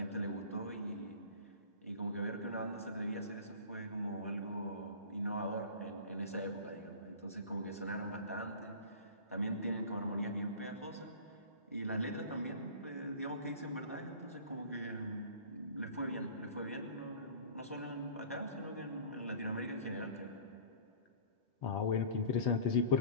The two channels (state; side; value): inverted; both; correlation -0.41